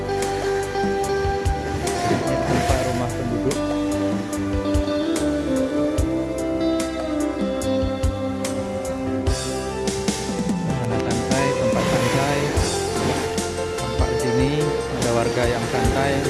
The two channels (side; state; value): both; identical; correlation 1.00